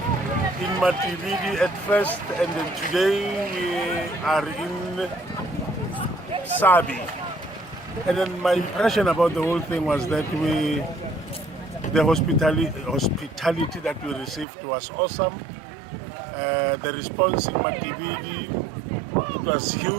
in Matividi at first, and then today we are in Sabi. And then my impression about the whole thing was that the hospitality that we received was awesome. The response in Matividi was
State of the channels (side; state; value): left; drops out; at 14.5 s